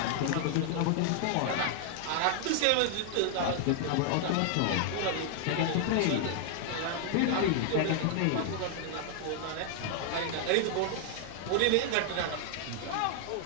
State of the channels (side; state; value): both; different; correlation 0.00